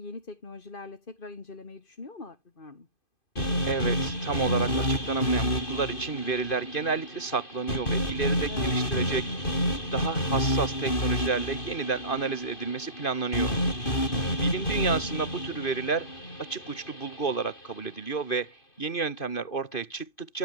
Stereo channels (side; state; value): right; late; 2.5 ms